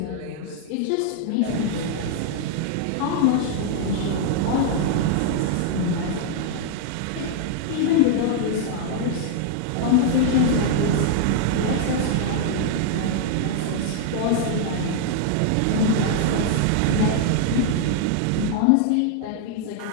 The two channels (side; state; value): both; different; correlation -0.01